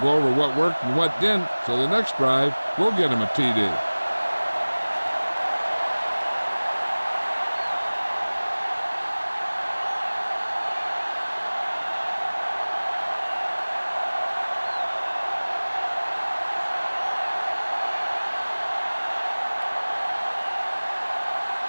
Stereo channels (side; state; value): both; inverted; correlation -1.00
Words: go over what worked and what didn't, so the next drive will get him a TD.